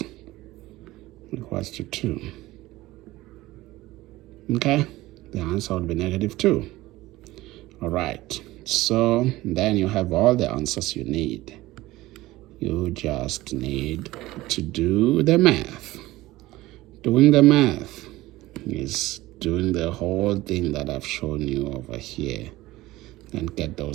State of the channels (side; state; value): left; quieter; 17.9 dB